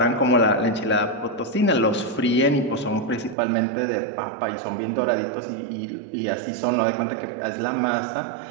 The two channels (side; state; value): left; drops out; at 3.4 s